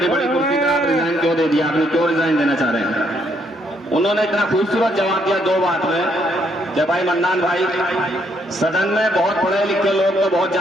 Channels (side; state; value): both; normal; correlation 0.72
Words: बड़ी कुर्सी पे आप रिजाइन क्यों दे दिया, आपने क्यों रिजाइन देना चाह रहे हैं? उन्होंने इतना खूबसूरत जवाब दिया 2 बात में कि भाई मन्नान भाई, सदन में बहुत पढ़े लिखे लोग तो बहुत